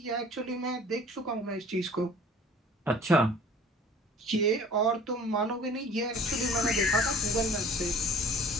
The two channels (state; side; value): normal; both; correlation 0.47